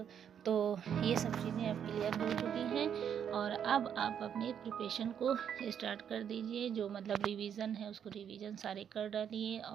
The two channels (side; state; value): left; quieter; 8.5 dB